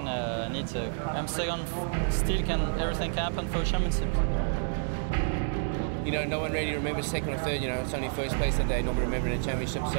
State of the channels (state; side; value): silent; left; 58 dB below the other